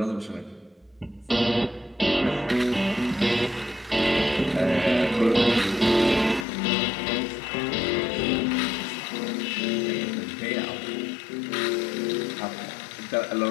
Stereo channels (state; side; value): drops out; right; at 6.5 s